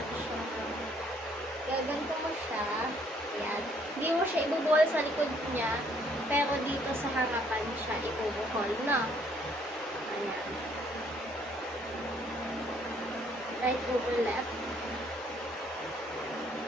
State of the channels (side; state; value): both; normal; correlation 0.65